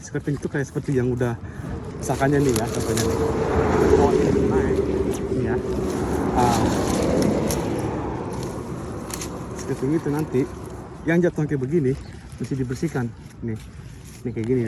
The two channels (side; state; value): both; identical; correlation 1.00